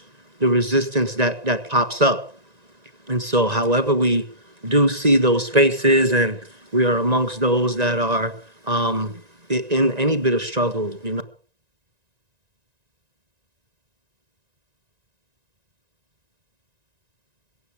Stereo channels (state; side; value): late; left; 1.9 ms